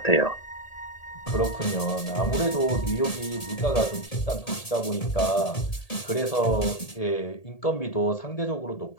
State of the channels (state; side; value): late; right; 1.8 ms